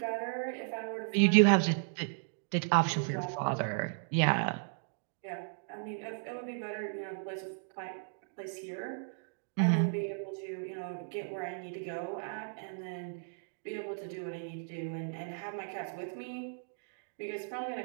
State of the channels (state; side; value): silent; left; digital silence